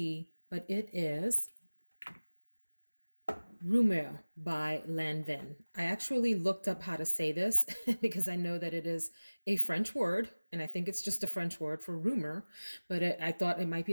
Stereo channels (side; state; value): both; inverted; correlation -1.00